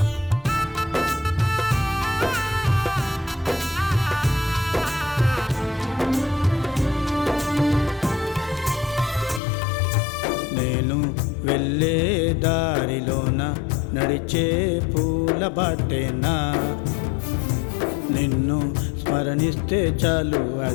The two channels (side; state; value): right; drops out; at 9.4 s